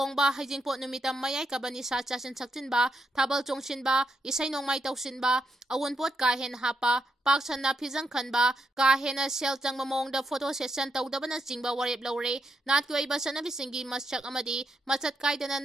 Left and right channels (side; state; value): both; normal; correlation 0.79